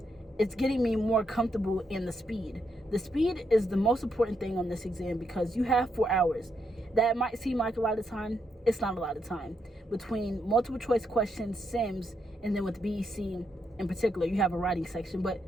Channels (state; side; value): normal; both; correlation 0.79